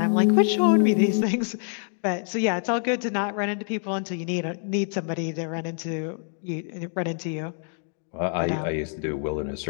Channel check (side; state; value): right; silent; 61 dB below the other